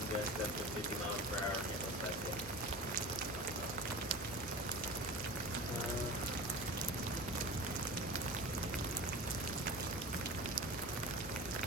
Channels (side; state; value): both; normal; correlation 0.33